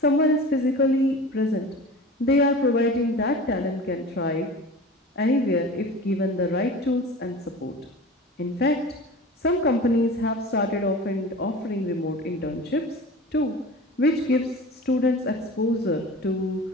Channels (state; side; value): normal; both; correlation 0.36